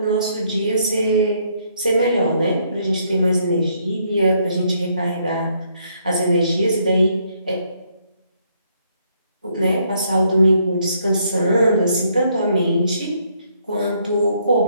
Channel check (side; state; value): both; inverted; correlation -0.71